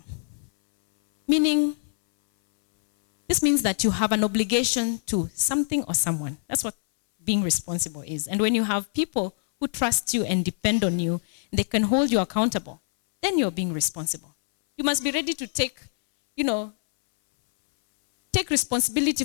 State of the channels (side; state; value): right; silent; 62 dB below the other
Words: Meaning, this means that you have an obligation to something or someone. That's what being responsible is. And when you have people who trust you and depend on you, they can hold you accountable, then you're being responsible. You must be ready to take responsibility